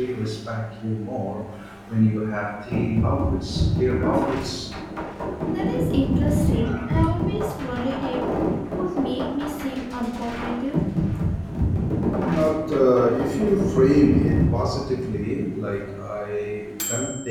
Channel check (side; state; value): both; identical; correlation 1.00